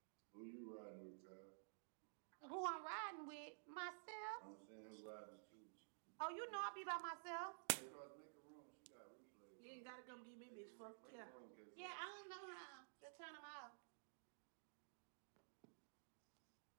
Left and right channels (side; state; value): left; silent; digital silence